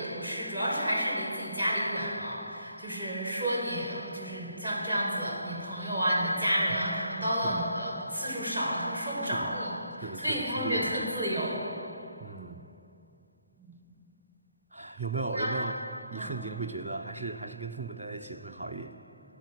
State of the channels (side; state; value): both; inverted; correlation -0.73